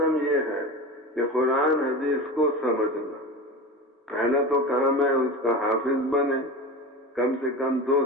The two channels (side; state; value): both; normal; correlation 0.28